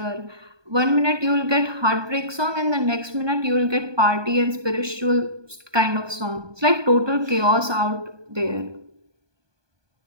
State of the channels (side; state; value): left; late; 1.2 ms